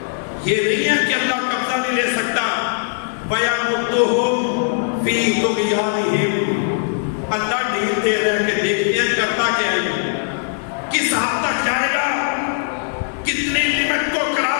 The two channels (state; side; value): silent; right; digital silence